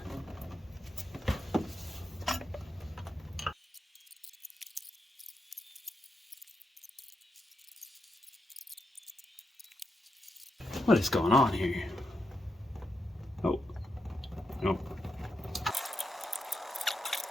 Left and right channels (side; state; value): both; normal; correlation 0.84